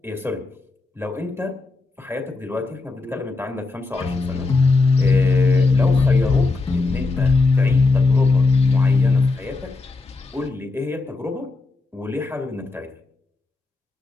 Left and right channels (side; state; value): right; quieter; 3.6 dB